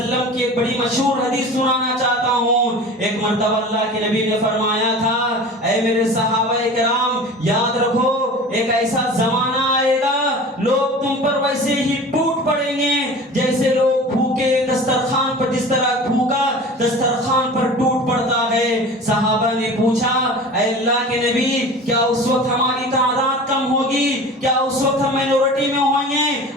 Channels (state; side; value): normal; both; correlation 0.37